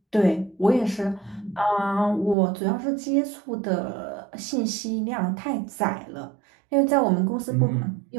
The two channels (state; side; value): drops out; left; at 2.4 s